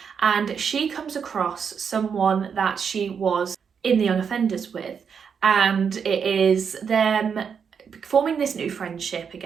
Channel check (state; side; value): quieter; left; 6.7 dB